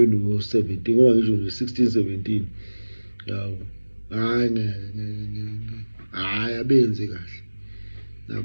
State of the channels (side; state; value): both; inverted; correlation -1.00